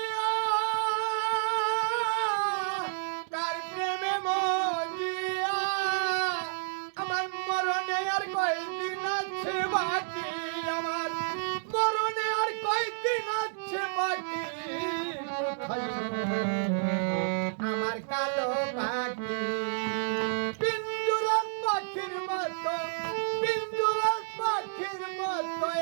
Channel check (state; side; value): silent; left; digital silence